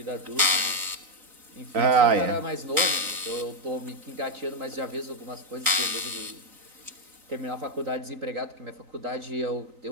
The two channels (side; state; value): left; late; 3.9 ms